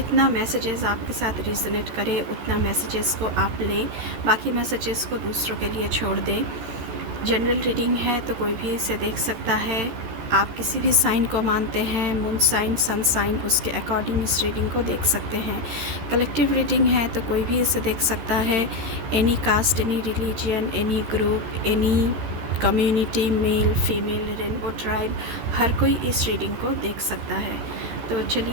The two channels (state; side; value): late; left; 14 ms